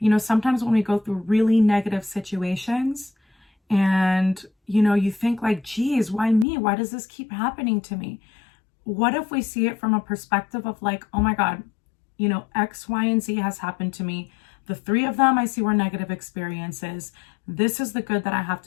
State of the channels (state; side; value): drops out; right; at 6.5 s